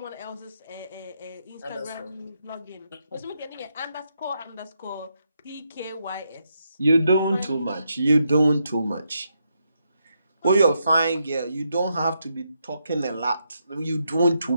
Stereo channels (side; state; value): both; inverted; correlation -0.80